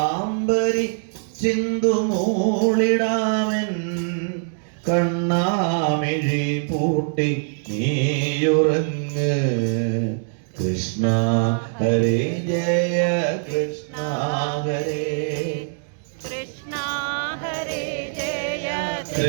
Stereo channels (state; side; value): silent; left; digital silence